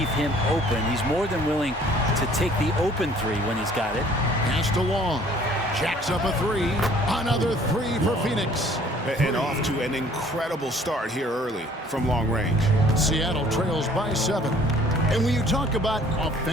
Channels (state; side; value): normal; both; correlation 0.55